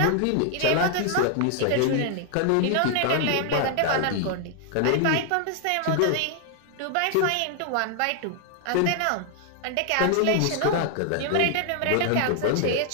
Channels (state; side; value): different; both; correlation 0.00